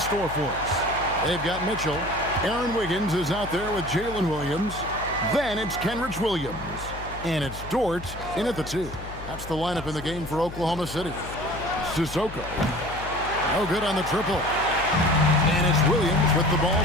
for us. They've got Mitchell. Aaron Wiggins is out there with Jalen Williams. Then it's Kenrich Williams. And it's Dort in at the 2. That's the lineup in the game for Oklahoma City. Sissoko. No good on the triple. And it's Williams with the ball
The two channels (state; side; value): noise; left; hum, 12 dB below the sound